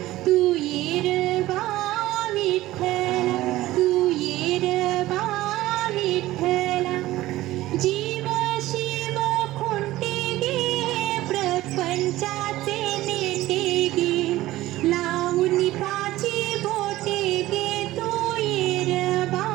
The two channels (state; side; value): quieter; left; 16.4 dB